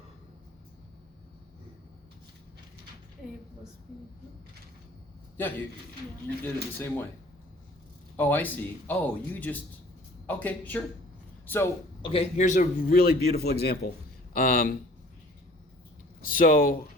A plus B. Yeah, you did it the same way. Oh, I see. Oh, you just, okay, sure. So, okay, here's a really beautiful example. So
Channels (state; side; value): normal; both; correlation 0.51